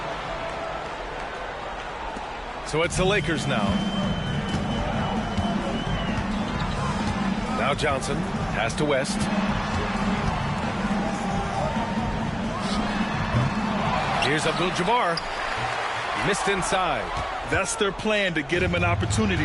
So it's the Lakers now. Now Johnson. Pass to West. Here's Abdul-Jabaar. Missed inside. That's their plan, to get him an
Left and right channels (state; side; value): identical; both; correlation 1.00